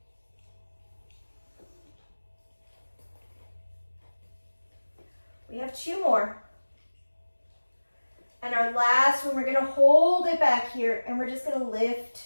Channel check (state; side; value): inverted; both; correlation -1.00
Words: We have two more. And our last one, we're going to hold it back here, and we're just going to lift